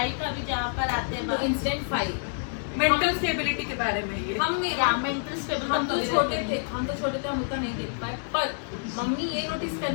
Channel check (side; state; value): right; silent; 60 dB below the other